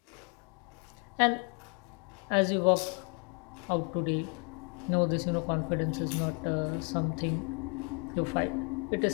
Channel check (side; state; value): right; quieter; 35.4 dB